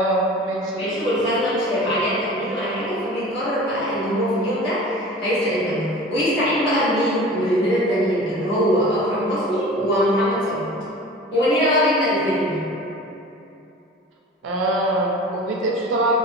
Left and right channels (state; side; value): normal; both; correlation 0.39